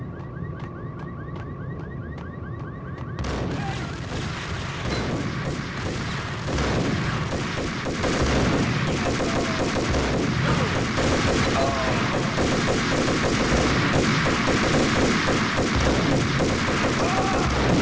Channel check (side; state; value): both; identical; correlation 1.00